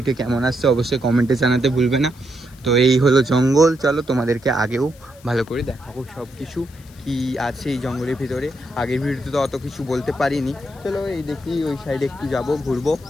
কেমন আসছে অবশ্যই কমেন্টে জানাতে ভুলবে না। তো এই হলো জঙ্গল, চলো তোমাদেরকে আগেও ভালো করে দেখাবো সব কিছু কি আছে এই জঙ্গলের ভিতরে। আগের ভিডিওতে তো অত কিছু বলতে পারিনি। চলো এই দেখি ওই সাইডে একটু যাব, ঘুরবো,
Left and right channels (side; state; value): left; noise; hiss, 26 dB below the sound